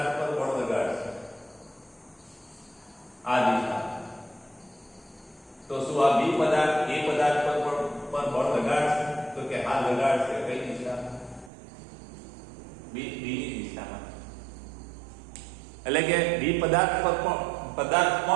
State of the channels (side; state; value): left; drops out; at 11.5 s